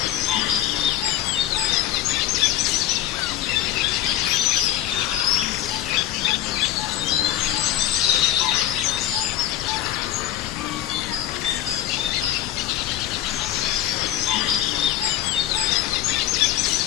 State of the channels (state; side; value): quieter; right; 12.6 dB